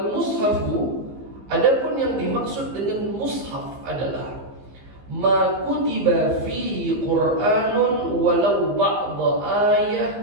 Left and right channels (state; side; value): late; left; 15 ms